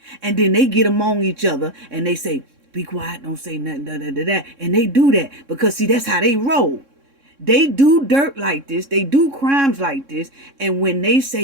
and then they get among each other and they say, be quiet, don't say nothing, and they do that because, see, that's how they roll. They do dirt like this. They do crimes like this. And when they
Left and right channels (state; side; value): late; left; 3.6 ms